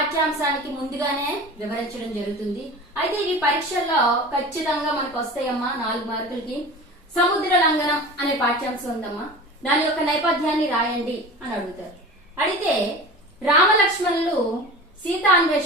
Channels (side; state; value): both; normal; correlation 0.34